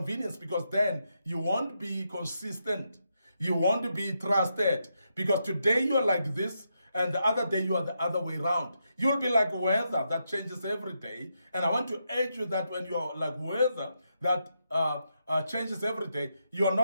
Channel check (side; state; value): both; inverted; correlation -0.82